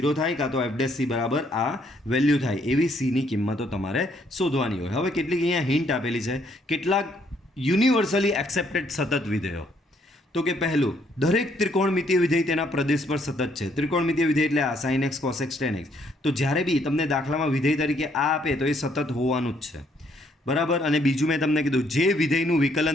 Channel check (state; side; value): normal; both; correlation 0.69